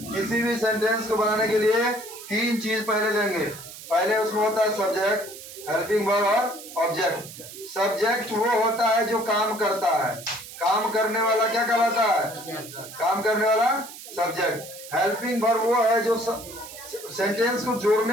किसी भी सेंटेंस को बनाने के लिए 3 चीज पहले लेंगे। पहले उसमें होता है सब्जेक्ट, हेल्पिंग वर्ब और ऑब्जेक्ट। सब्जेक्ट वो होता है जो काम करता है। काम करने वाला क्या कहलाता है? काम करने वाला सब्जेक्ट। हेल्पिंग वर्ब वो है जो सेंटेंस को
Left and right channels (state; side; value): noise; right; hiss, 14 dB below the sound